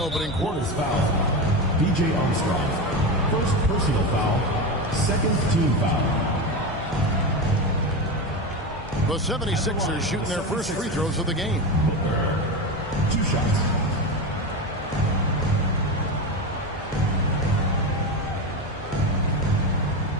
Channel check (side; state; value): both; normal; correlation 0.19